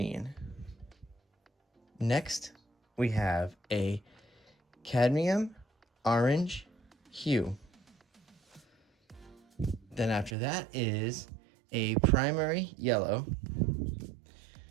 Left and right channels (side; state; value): left; drops out; at 10.4 s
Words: Next, we have a cadmium orange hue. Then after that is a primary yellow.